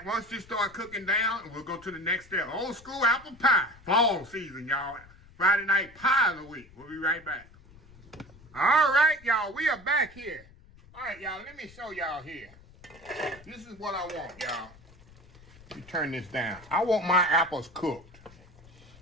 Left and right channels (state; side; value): noise; left; rumble, 23 dB below the sound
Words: once this start cooking down, and we'll go to the next step. Old school apple pie, fall season, y'all. Friday night pie of the week. We'll be right back. All right, y'all, we are back here. All right, y'all, let me show y'all here. This is what I want, y'all. Let me turn this down. I want my apples cooked.